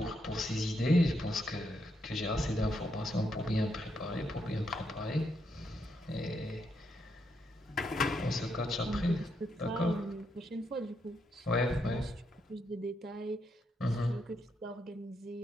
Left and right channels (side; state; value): both; normal; correlation 0.79